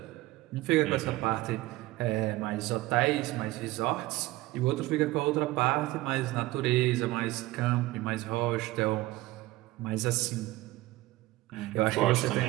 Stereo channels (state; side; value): quieter; left; 18.5 dB